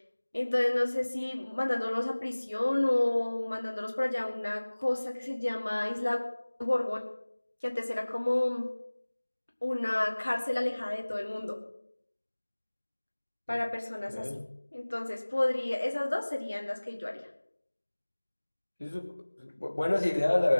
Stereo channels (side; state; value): both; inverted; correlation -1.00